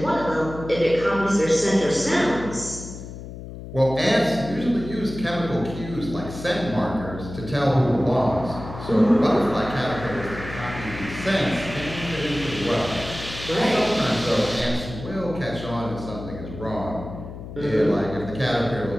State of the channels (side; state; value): left; noise; hum, 11 dB below the sound